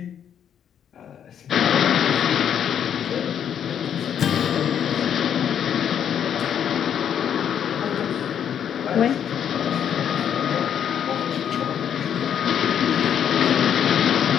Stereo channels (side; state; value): right; quieter; 8.9 dB